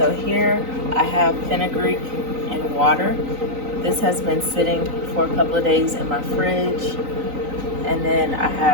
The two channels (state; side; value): late; left; 3.9 ms